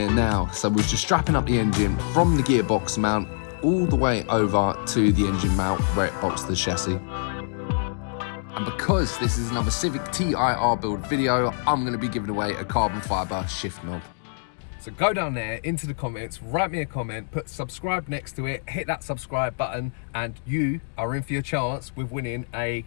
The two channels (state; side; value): silent; right; digital silence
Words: now. So we're just strapping up the engine from the gearbox mount all the way over to the engine mount where it bolts to the chassis. And because this is another Civic TIR build video, I'm going to be giving away a carbon fibre shift knob. So go down there into the comments, write me a comment, put subscribe next to it, hit that subscribe button, and you are in for your chance with winning a